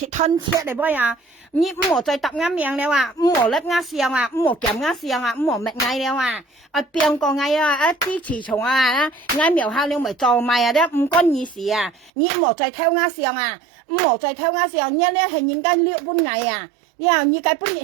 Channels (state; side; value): drops out; left; at 12.1 s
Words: 吞切嚟噃呀！你冇再答啱命了啊！冇甩啱上啊！冇夾啱上啊！冇搣嗌了啊！邊個嗌啊？啲雌蟲啊！嗌苗下了咪做埋啊！啲唔關你事啊！你冇再偷啱上啊！冇再偷啱上，你咧係人家六本嗌啊！你話你計本日